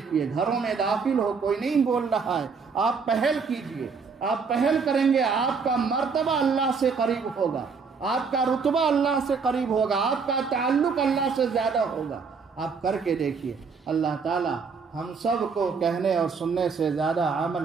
گھروں میں داخل ہو، کوئی نہیں بول رہا ہے، آپ پہل کیجئے، آپ پہل کریں گے، آپ کا مرتبہ اللہ سے قریب ہوگا، آپ کا رتبہ اللہ سے قریب ہوگا، آپ کا تعلق اللہ سے زیادہ ہوگا۔ آپ کر کے دیکھیے، اللہ تعالی ہم سب کو کہنے اور سننے سے زیادہ عمل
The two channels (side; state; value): left; quieter; 5.3 dB